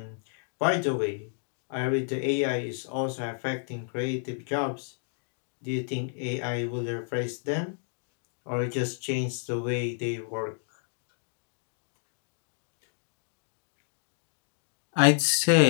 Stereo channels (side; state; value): right; silent; digital silence